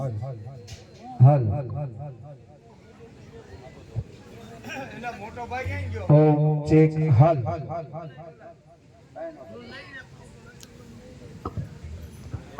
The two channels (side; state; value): both; identical; correlation 1.00